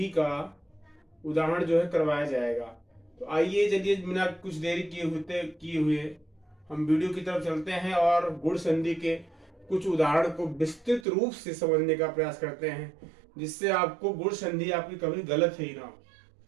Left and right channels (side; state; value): left; drops out; at 11.1 s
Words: का उदाहरण जो है करवाया जाएगा। तो आइए चलिए बिना कुछ देरी किए हुए हम वीडियो की तरफ चलते हैं और गुण संधि के कुछ उदाहरण को विस्तृत रूप से समझने का प्रयास करते हैं, जिससे आपको गुण संधि आपकी कभी गलत ही ना हो।